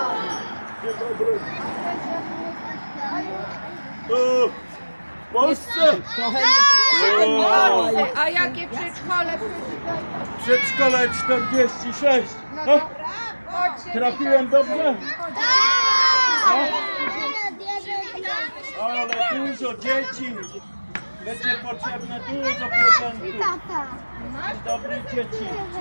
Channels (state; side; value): inverted; both; correlation -1.00